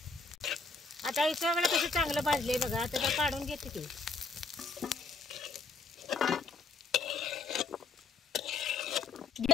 आता हे सगळं कसं चांगलं भाजले बघा. आता काढून घेते ते.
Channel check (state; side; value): quieter; right; 3.9 dB